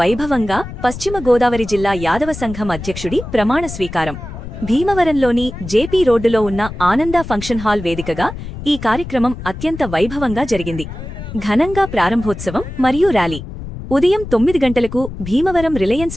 పశ్చిమ గోదావరి జిల్లా యాదవ సంఘం అధ్యక్షుడి ప్రమాణ స్వీకారం. భీమవరంలోని జేపీ రోడ్డులో ఉన్న ఆనంద ఫంక్షన్ హాల్ వేదికగా ఈ కార్యక్రమం అత్యంత వైభవంగా జరిగింది. ఘనంగా ప్రారంభోత్సవం మరియు ర్యాలీ ఉదయం 9 గంటలకు భీమవరం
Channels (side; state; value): left; noise; rumble, 10 dB below the sound